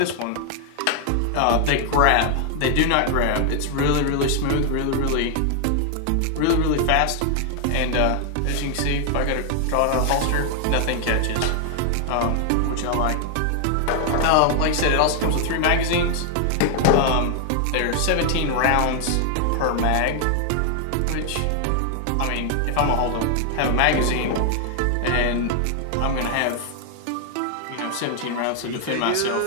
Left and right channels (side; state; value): both; different; correlation 0.00